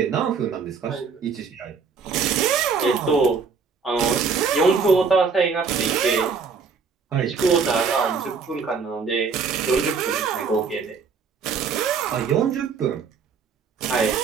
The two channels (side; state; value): left; quieter; 5.3 dB